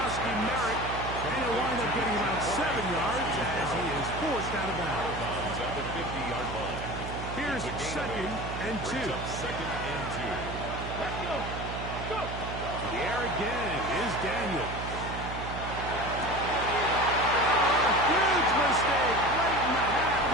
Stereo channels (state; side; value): noise; right; hum, 7 dB below the sound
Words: Merrick, and he'll wind up getting about 7 yards as he is forced out of bounds. Bounds at the 50-yard line. Here's 2nd and 2. Brings up 2nd and 2. Let's go. Go. To the air again is Daniel. Huge mistake late in the